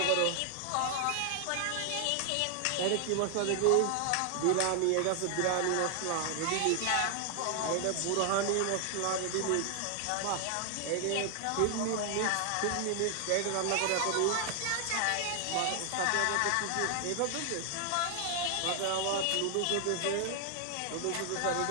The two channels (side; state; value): both; different; correlation 0.00